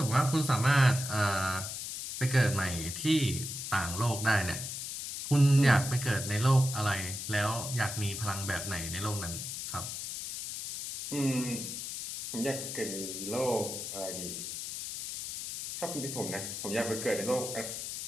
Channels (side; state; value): left; noise; hiss, 6 dB below the sound